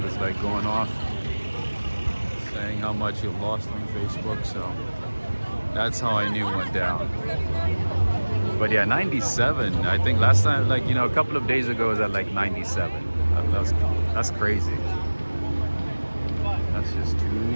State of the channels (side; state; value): both; inverted; correlation -1.00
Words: was like going off saying how much he lost on Facebook. So that's how I knew it went down. But yeah, 97. I think last time, like, you know, a couple of days ago, it was at like 97. That's crazy. That's just